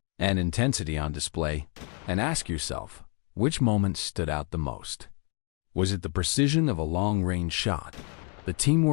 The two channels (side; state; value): right; quieter; 36.4 dB